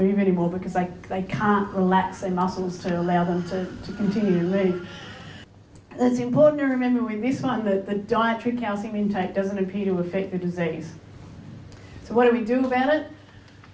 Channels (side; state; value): both; identical; correlation 1.00